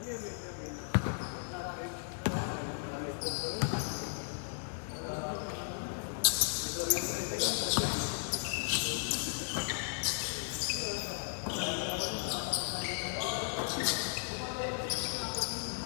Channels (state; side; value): silent; right; digital silence